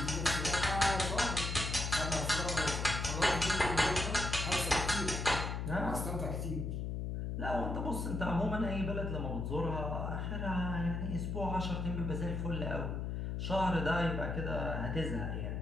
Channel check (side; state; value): left; noise; hum, 2 dB below the sound